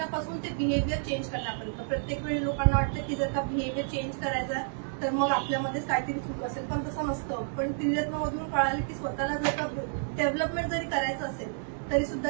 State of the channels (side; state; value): left; silent; digital silence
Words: ते बिहेवियर चेंज करण्यापर्यंत. प्रत्येक वेळी लोकांना वाटतं की जर का बिहेवियर चेंज करायचा तर मग आपल्यामध्येच काहीतरी चूक असेल, पण तसं नसतं. पण त्रिरत्नमधून कळालं की स्वतःला जर का डेव्हलपमेंट जरी करायचं असेल तरी सुद्धा